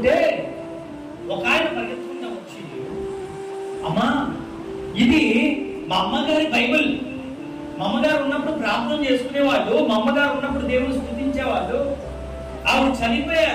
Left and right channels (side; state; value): both; identical; correlation 1.00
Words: ఒక ఆయన పరిగెత్తుకుంటా వచ్చి, అమ్మా ఇది మా అమ్మగారి బైబిల్, మా అమ్మగారు ఉన్నప్పుడు ప్రార్థన చేసుకునేవాళ్ళు, మా అమ్మగారు ఉన్నప్పుడు దేవుని స్తుతించేవాళ్ళు, ఆవిడ